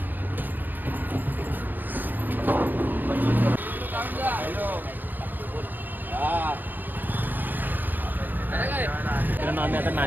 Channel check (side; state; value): left; late; 0.087 ms